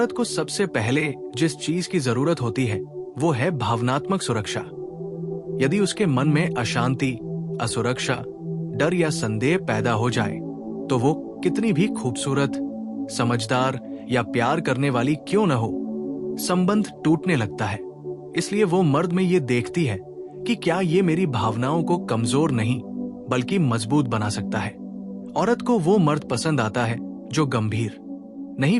को सबसे पहले जिस चीज की जरूरत होती है वो है भावनात्मक सुरक्षा। यदि उसके मन में अशांति, असुरक्षा, डर या संदेह पैदा हो जाए तो वो कितनी भी खूबसूरत, समझदार या प्यार करने वाली क्यों न हो, संबंध टूटने लगता है। इसलिए वो मर्द में ये देखती है कि क्या ये मेरी भावनाओं को कमजोर नहीं बल्कि मजबूत बना सकता है। औरत को वो मर्द पसंद आता है जो गंभीर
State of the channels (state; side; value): identical; both; correlation 1.00